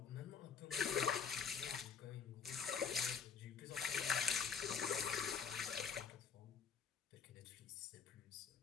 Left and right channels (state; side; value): quieter; right; 6.4 dB